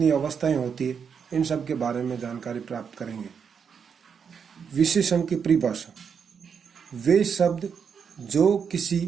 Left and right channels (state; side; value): quieter; left; 6.7 dB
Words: अवस्थाएं होती है, इन सब के बारे में जानकारी प्राप्त करेंगे। विशेषण की परिभाषा: वे शब्द जो